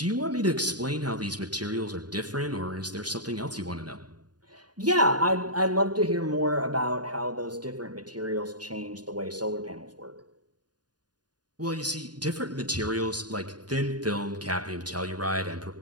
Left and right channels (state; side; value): late; left; 0.69 ms